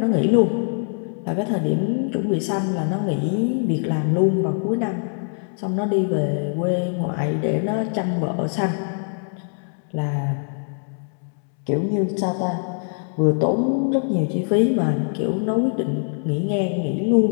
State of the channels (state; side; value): silent; right; 64 dB below the other